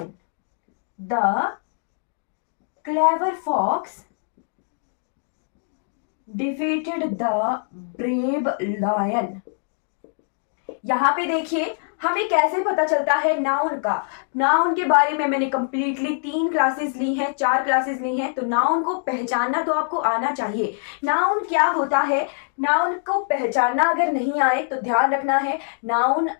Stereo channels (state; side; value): silent; right; digital silence